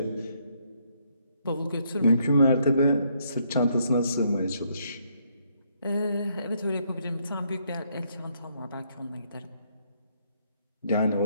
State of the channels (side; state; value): both; inverted; correlation -0.72